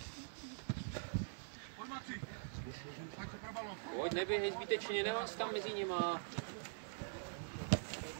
Pojď, neběhej zbytečně, nemáš tam mezi nima.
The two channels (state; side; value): silent; left; digital silence